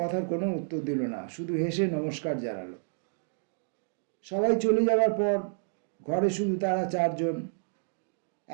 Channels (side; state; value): left; silent; digital silence